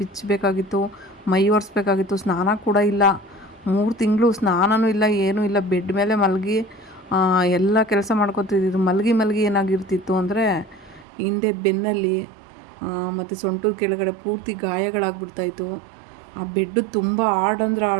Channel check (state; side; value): drops out; left; at 11.1 s